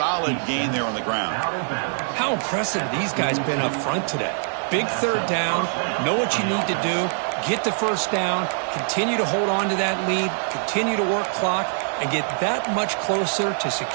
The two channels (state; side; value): silent; left; 63 dB below the other